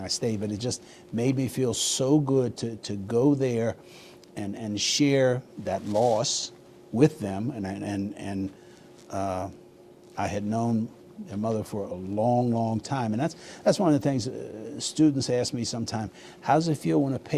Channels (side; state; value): both; identical; correlation 1.00